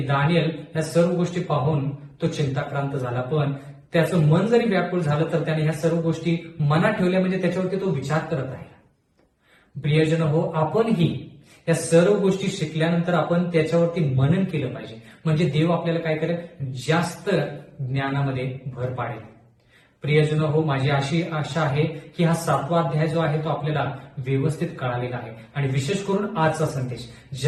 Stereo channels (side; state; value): both; identical; correlation 1.00